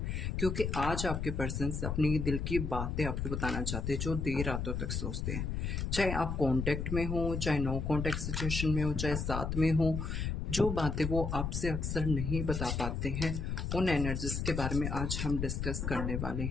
क्योंकि आज आपके पर्सन्स अपनी दिल की बातें आपको बताना चाहते हैं जो देर रातों तक सोचते हैं। चाहे आप कांटेक्ट में हो, चाहे नो कांटेक्ट सिचुएशन में हो, चाहे साथ में हो, जो बातें वो आपसे अक्सर नहीं बता पाते हैं, उन एनर्जीज के बारे में आज हम डिस्कस करने वाले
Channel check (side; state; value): left; noise; rumble, 2 dB below the sound